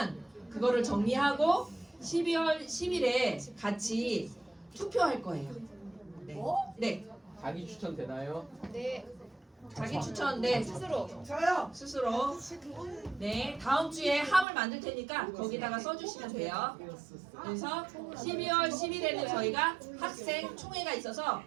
그거를 정리하고 12월 10일에 같이 투표할 거예요. 네. 네. 자기 추천 되나요? 자기 추천 네 스스로 네 다음 주에 함을 만들 테니까 거기다가 써주시면 돼요. 그래서 12월 10일에는 저희가 학생 총회가 있어서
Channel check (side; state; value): left; drops out; at 14.5 s